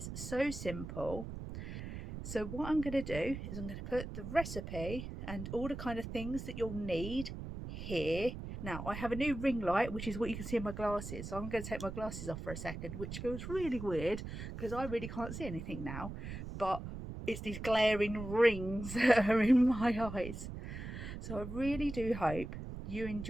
so simple. So what I'm going to do is I'm going to put the recipe and all the kind of things that you'll need here. Now I have a new ring light, which is what you can see in my glasses. So I'm going to take my glasses off for a second, which feels really weird because I really can't see anything now. But it's these glaring rings that are in my eyes. So I really do hope you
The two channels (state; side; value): noise; right; rumble, 8 dB below the sound